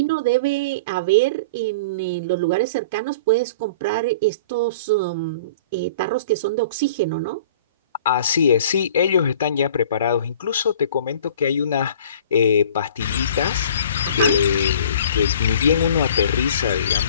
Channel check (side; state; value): both; inverted; correlation -0.45